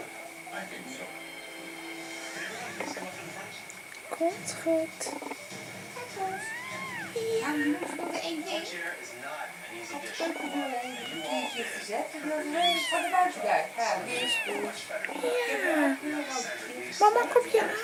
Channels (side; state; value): both; identical; correlation 1.00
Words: Komt goed. Ja, je moest nog één ding. Ik had de keukendeur een keertje gezet. En die was heel van de buitendeur. Ja, die is goed. Ja. Mama, kom je